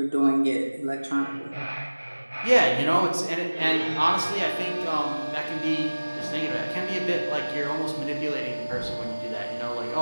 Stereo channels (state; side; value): inverted; both; correlation -1.00